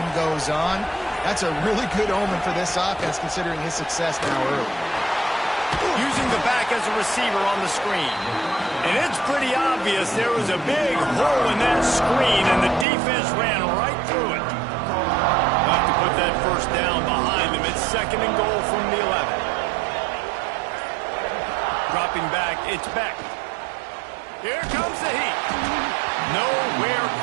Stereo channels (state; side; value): drops out; left; at 12.9 s